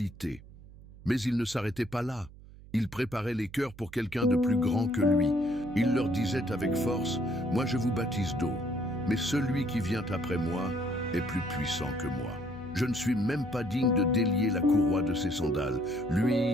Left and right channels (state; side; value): noise; right; hum, 19 dB below the sound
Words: Mais il ne s'arrêtait pas là. Il préparait les cœurs pour quelqu'un de plus grand que lui. Il leur disait avec force « Moi je vous baptise d'eau, mais celui qui vient après moi est plus puissant que moi. Je ne suis même pas digne de délier la courroie de ses sandales.